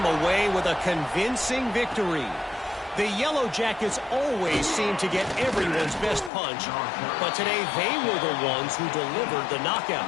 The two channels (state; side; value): drops out; right; at 6.3 s